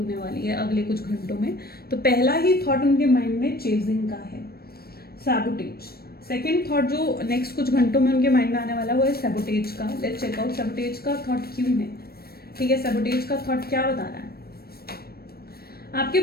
वाली है अगले कुछ घंटों में। तो पहला ही थॉट उनके माइंड में चेजिंग का है, सैबोटेज। सेकेंड थॉट जो नेक्स्ट कुछ घंटों में उनके माइंड में आने वाला है वो है सैबोटेज का। लेट्स चेक आउट सैबोटेज का थॉट क्यों है, ठीक है, सैबोटेज का थॉट क्या बता रहा है। आपके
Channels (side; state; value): right; late; 0.45 ms